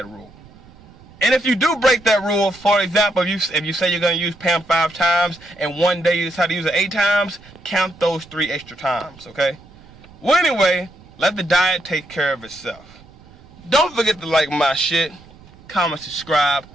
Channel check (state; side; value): noise; right; rumble, 24 dB below the sound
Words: rule. And if you do break that rule, for example, if you say you're going to use PAM 5 times, and one day you decide to use it 8 times, count those 3 extra times, okay? Well, anyway, let the diet take care of itself. Don't forget to like my shit, comment, subscribe,